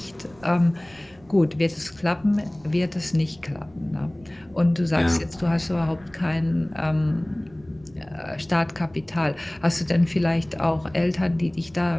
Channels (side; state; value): right; noise; rumble, 27 dB below the sound